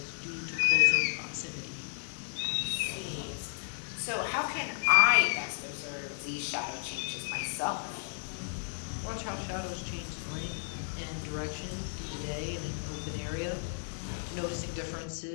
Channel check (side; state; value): right; silent; digital silence